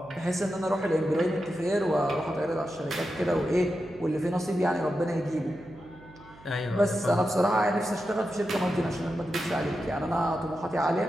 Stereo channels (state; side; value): noise; right; hum, 23 dB below the sound